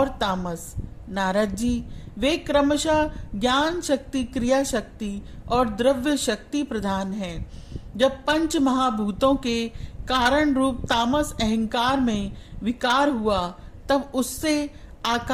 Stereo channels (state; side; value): identical; both; correlation 1.00